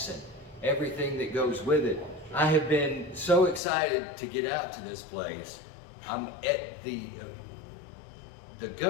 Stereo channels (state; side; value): drops out; right; at 3.6 s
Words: and everything that goes with it. I have been so excited to get out to this place. I'm at the